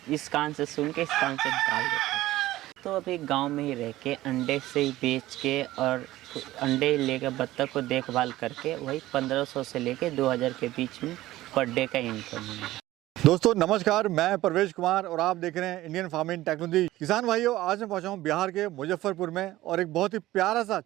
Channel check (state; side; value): quieter; left; 16.2 dB